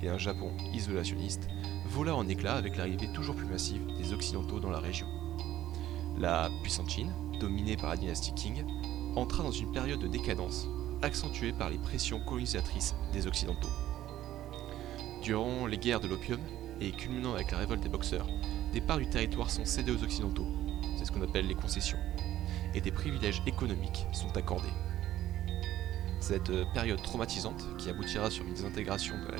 et un Japon isolationniste, vola en éclats avec l'arrivée toujours plus massive des Occidentaux dans la région. La puissante Chine, dominée par la dynastie Qing, entra dans une période de décadence, accentuée par les pressions colonisatrices des Occidentaux. Durant les guerres de l'opium, et culminant avec la révolte des Boxers, des parts du territoire sont cédées aux Occidentaux, c'est ce qu'on appelle les concessions, et des privilèges économiques sont accordés. Cette période traumatisante, qui aboutira sur une désintégration de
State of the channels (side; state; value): left; quieter; 13.4 dB